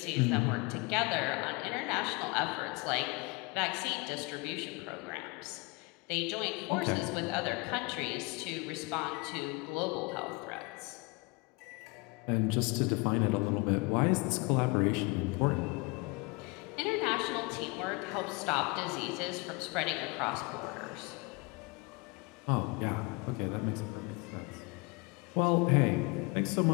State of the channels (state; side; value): quieter; right; 26.5 dB